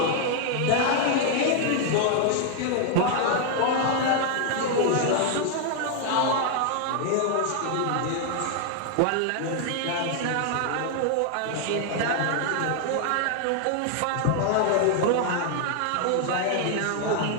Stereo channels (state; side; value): different; both; correlation 0.00